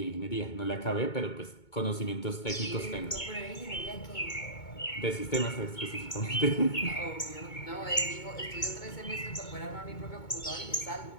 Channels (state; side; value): late; right; 2.2 ms